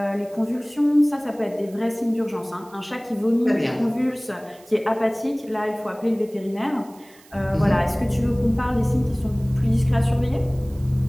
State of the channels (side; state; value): right; noise; hiss, 26 dB below the sound